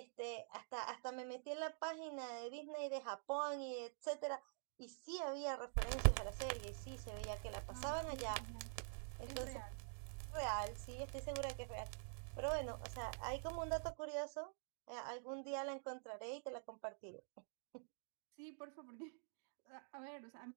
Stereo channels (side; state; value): left; silent; digital silence